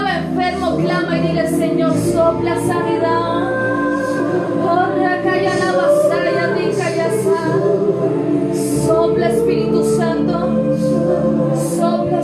enfermo, clama y dile, Señor, sopla sanidad. Sopla, Espíritu Santo. Sopla,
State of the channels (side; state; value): both; identical; correlation 1.00